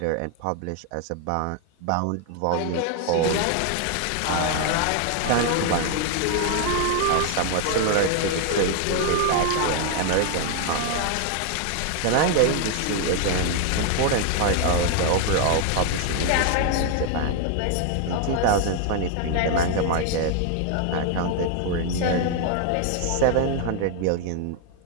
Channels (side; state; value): both; different; correlation 0.00